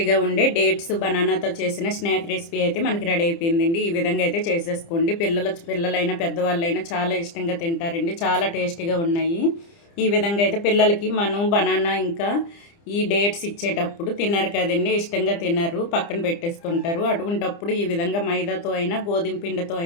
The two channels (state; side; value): late; right; 30 ms